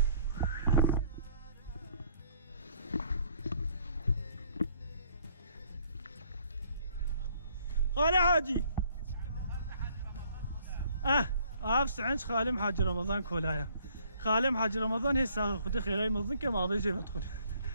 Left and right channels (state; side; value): inverted; both; correlation -0.62